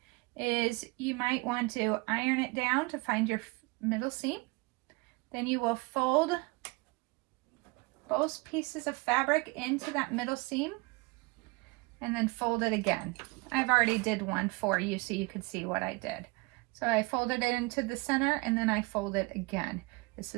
is you might want to iron it down to find your middle seam. Then you will fold both pieces of fabric into that middle seam and then fold it again. I've already did one for you so you could see what I did. So I folded it into the center and then I fold it again. This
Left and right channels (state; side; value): quieter; left; 26.2 dB